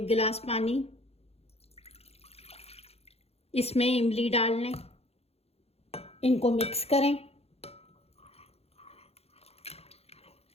गिलास पानी, इसमें इमली डाल लें, इनको मिक्स करें,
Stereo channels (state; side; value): late; right; 0.29 ms